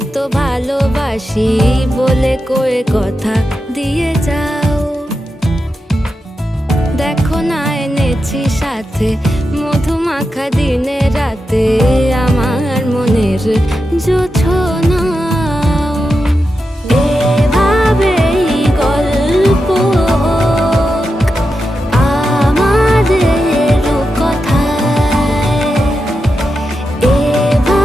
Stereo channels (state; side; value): normal; both; correlation 0.89